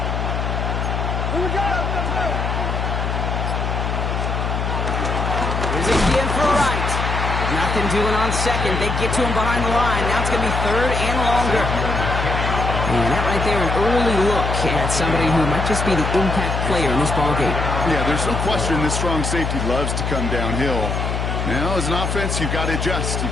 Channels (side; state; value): left; noise; hum, 1 dB below the sound